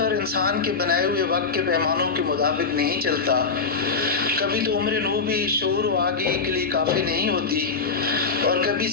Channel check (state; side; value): quieter; right; 4.7 dB